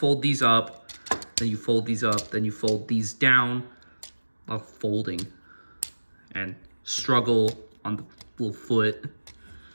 these up, then you fold these up, then you fold these down. Folding. And struggle on the little foot.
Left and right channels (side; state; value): both; inverted; correlation -1.00